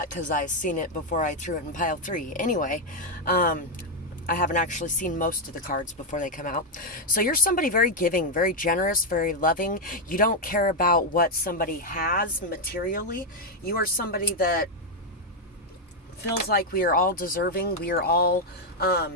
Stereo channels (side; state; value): both; normal; correlation 0.02